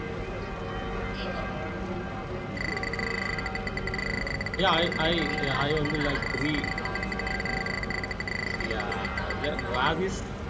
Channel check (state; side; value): identical; both; correlation 1.00